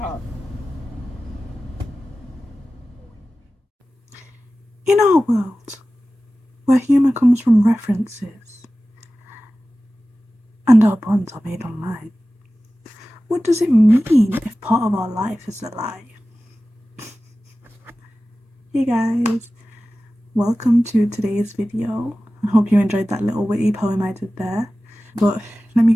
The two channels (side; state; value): both; normal; correlation 0.96